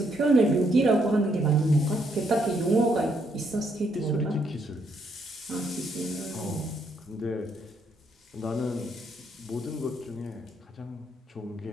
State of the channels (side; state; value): both; normal; correlation 0.73